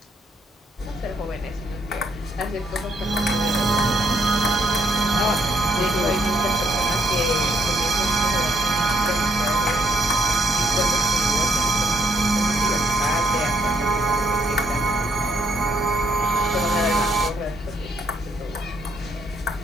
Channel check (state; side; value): normal; both; correlation 0.72